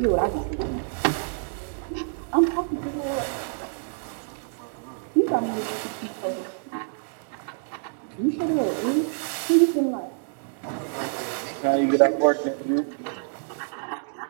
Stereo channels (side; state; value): left; silent; digital silence